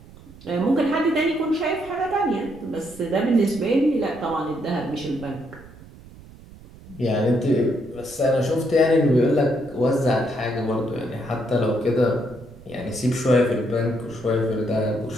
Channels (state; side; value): noise; right; rumble, 20 dB below the sound